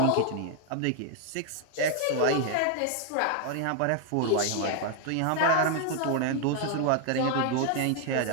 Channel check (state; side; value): different; both; correlation 0.00